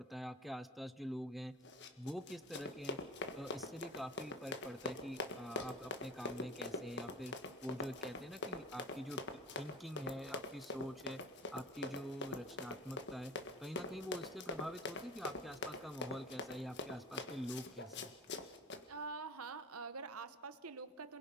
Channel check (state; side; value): normal; both; correlation 0.35